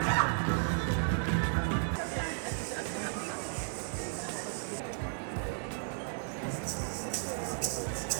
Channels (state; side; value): silent; left; 55 dB below the other